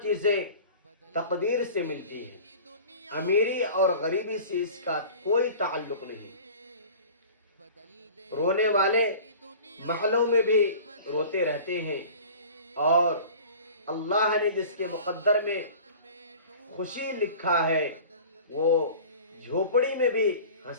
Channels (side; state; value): both; inverted; correlation -0.41